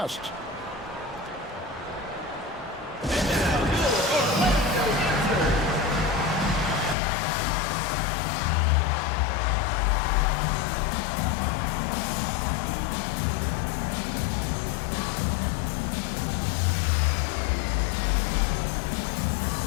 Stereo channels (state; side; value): drops out; right; at 7.0 s